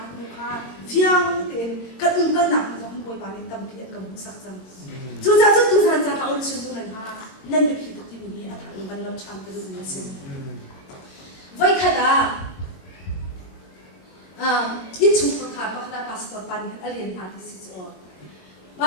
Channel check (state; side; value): late; right; 22 ms